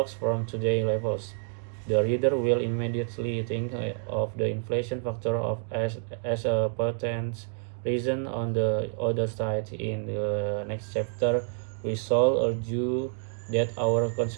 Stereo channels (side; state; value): left; silent; digital silence